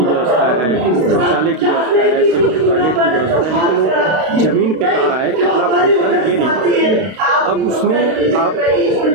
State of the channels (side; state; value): left; late; 32 ms